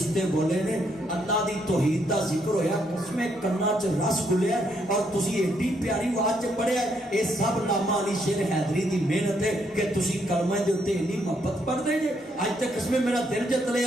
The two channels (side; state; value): both; normal; correlation 0.74